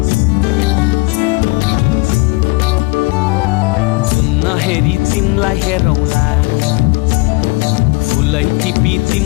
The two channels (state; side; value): quieter; right; 25.7 dB